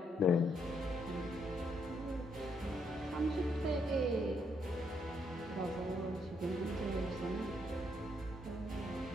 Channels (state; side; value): normal; both; correlation 0.75